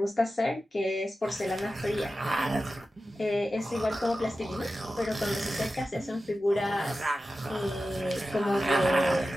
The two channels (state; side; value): normal; both; correlation 0.93